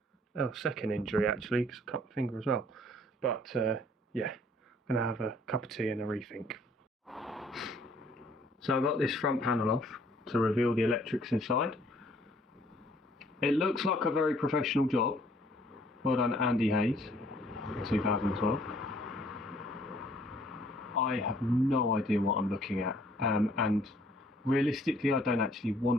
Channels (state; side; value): normal; both; correlation 0.60